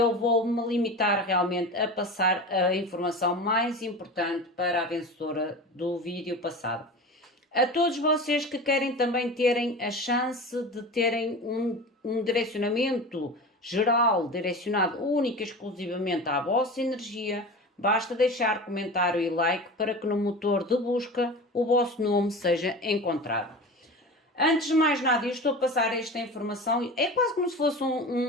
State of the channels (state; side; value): normal; both; correlation 0.31